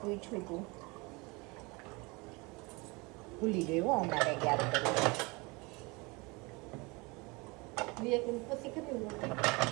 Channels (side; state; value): left; quieter; 26.3 dB